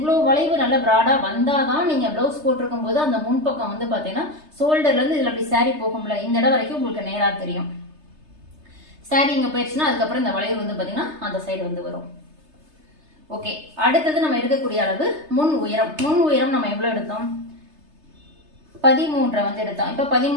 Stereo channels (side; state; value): left; late; 3.3 ms